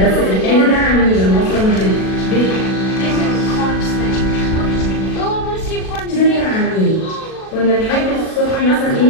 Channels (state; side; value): late; right; 37 ms